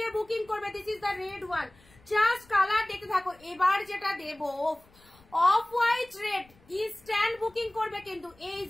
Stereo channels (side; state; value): left; noise; rumble, 28 dB below the sound